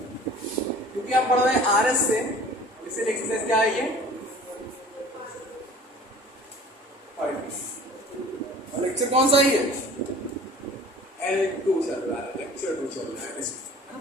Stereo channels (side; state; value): both; normal; correlation 0.46